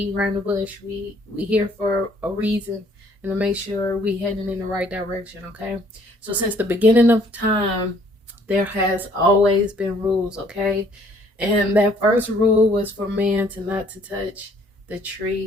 around the bush. We here for a reason and to make sure we heading in the right direction, okay? So since the beginning of time, there has always been rules, okay? And that first rule was for man to not to touch the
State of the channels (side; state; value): both; normal; correlation 0.62